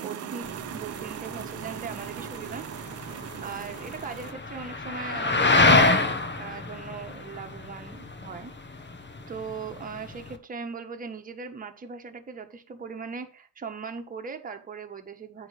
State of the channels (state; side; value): normal; both; correlation -0.07